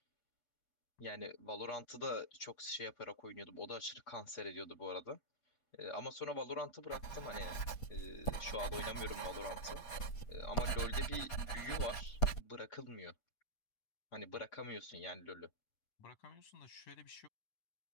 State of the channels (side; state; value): right; late; 8.4 ms